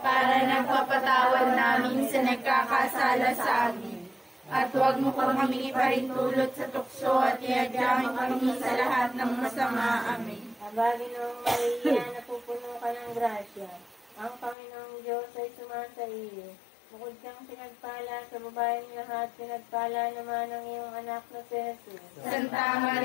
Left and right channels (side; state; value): right; drops out; at 14.6 s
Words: nagpapatawad namin sa nagkakasala sa amin. At huwag mo po kami iparintulot sa tukso at iadyamin kami sa lahat ng masama. Amen. Abagin ng Maria, napupuno ka ng grasya. Ang Panginoong Diyos ay sumasa iyo. Bukod kang pinagpala sa babaeng lahat, pinagpala naman ang iyong anak na si Jesus. Santa